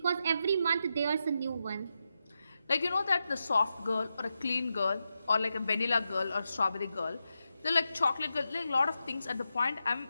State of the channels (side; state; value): both; inverted; correlation -0.88